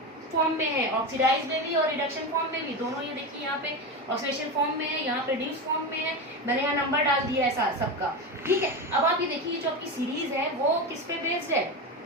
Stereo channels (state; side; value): normal; both; correlation 0.19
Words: फॉर्म में है, ऑक्सीडाइज में भी और रिडक्शन फॉर्म में भी, दोनों ये देखिए यहाँ पे ऑक्सीडेशन फॉर्म में है, यहाँ पे रिड्यूस फॉर्म में है। मैंने यहाँ नंबर डाल दिया है सबका, ठीक है। अब आप ये देखिए जो आपकी सीरीज है वो किस पे बेस्ड है,